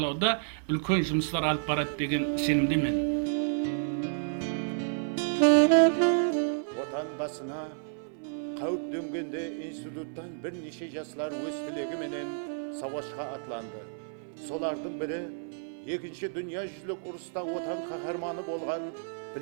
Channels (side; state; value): left; silent; 56 dB below the other